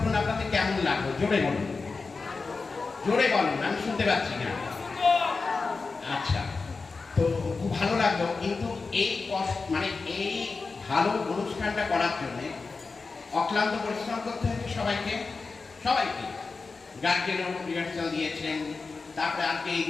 আপনাদের কেমন লাগলো? জোরে বলুন, জোরে বলুন, আমি শুনতে পাচ্ছি না। আচ্ছা, তো খুব ভালো লাগলো। কিন্তু এই এই ভালো অনুষ্ঠানটা করার জন্য অক্লান্ত পরিশ্রম করতে হয়েছে সবাইকে। গার্জেনও রিহার্সাল দিয়েছেন, তারপরে আজকে এই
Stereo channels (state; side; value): quieter; right; 4.2 dB